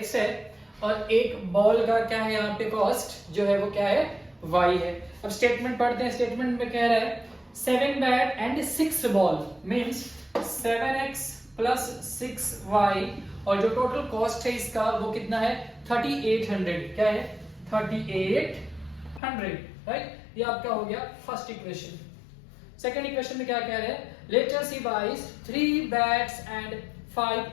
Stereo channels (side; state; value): right; drops out; at 19.2 s